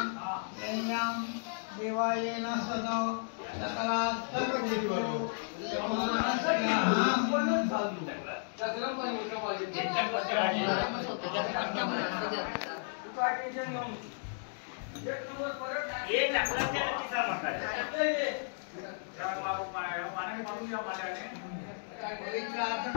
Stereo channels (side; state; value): right; silent; digital silence